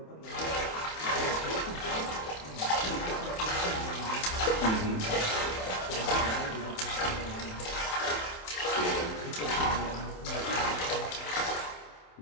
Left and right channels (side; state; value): right; late; 27 ms